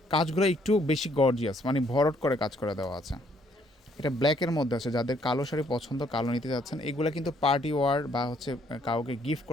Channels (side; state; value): both; normal; correlation 0.67